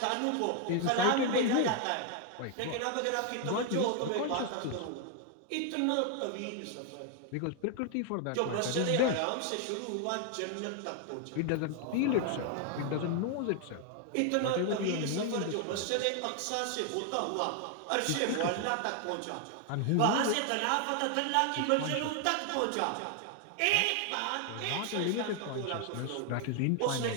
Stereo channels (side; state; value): both; different; correlation 0.00